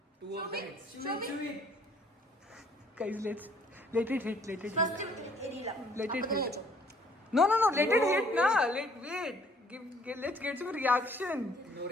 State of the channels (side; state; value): both; normal; correlation 0.60